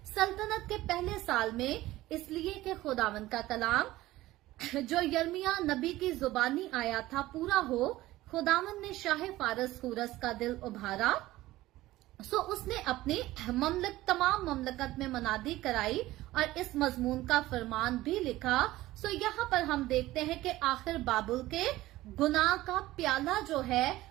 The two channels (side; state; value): left; quieter; 16.8 dB